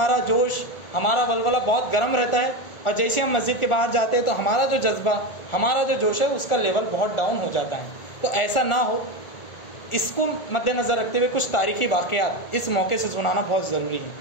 जोश, हमारा वलवला बहुत गर्म रहता है और जैसे हम मस्जिद के बाहर जाते हैं तो हमारा जो जज्बा, हमारा जो जोश है उसका लेवल बहुत डाउन हो जाता है। तो ऐसा ना हो, इसको मद्देनज़र रखते हुए कुछ तारीख़ी वाक़यात इस मौके से सुनाना बहुत ज़रूरी है।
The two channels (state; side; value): late; right; 1.4 ms